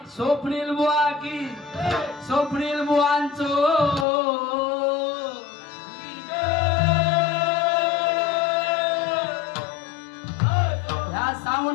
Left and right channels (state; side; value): drops out; right; at 4.0 s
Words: स्वप्नील बुवा की स्वप्नील बुवांचो या